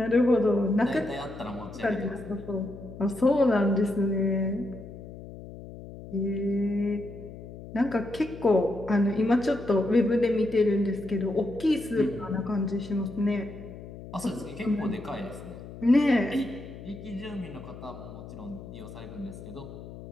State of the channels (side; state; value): left; noise; hum, 14 dB below the sound